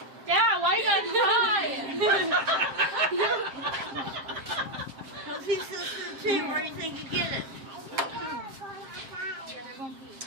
Yeah, why you gotta cry? Because he says to the team, where do you think you get it?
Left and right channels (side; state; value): left; late; 7.5 ms